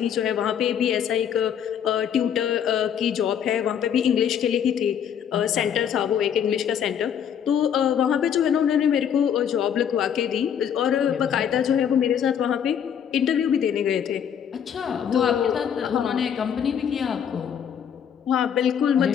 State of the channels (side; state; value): right; quieter; 8.5 dB